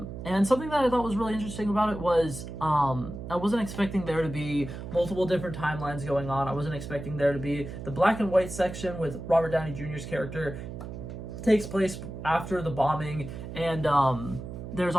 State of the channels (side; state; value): right; noise; hum, 9 dB below the sound